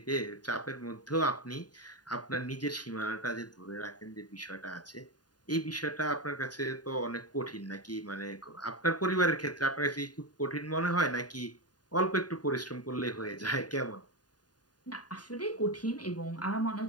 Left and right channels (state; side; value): late; right; 0.70 ms